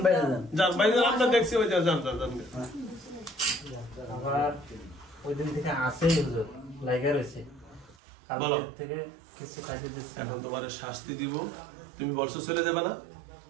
বাইরে যান। যান বাইরে যান, আমরা দেখছি। ওই যান যান যান। আবার ওই দিন থেকে আসেই হুজুর লাগা রয়েছে। বলো। থেকে কিছু খাইতে দিচ্ছে। এখন তোমার শাস্তি দিব, তুমি বলছো চলে যাবে না?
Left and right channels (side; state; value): left; drops out; at 8.0 s